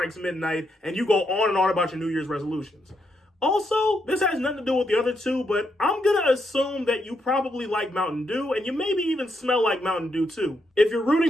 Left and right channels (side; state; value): both; normal; correlation 0.79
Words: midnight, and you go on and on about your New Year's resolutions. Also, this has nothing to do with the other two, but I'm going to assume that you probably like Mountain Dew, and you maybe even smell like Mountain Dew too. If you're